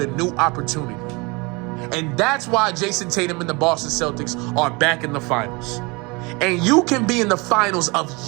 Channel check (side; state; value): left; quieter; 27.1 dB